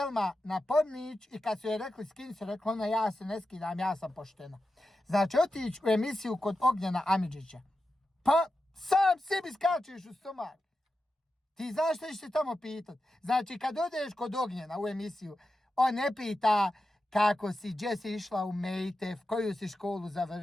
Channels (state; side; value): normal; both; correlation 0.90